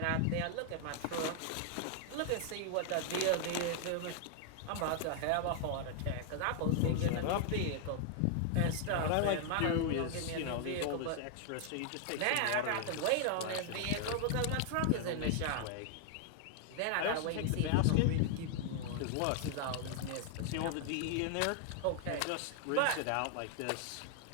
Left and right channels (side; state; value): both; different; correlation 0.00